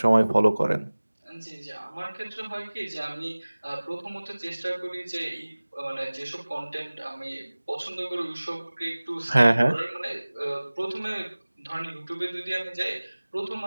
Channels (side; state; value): both; inverted; correlation -1.00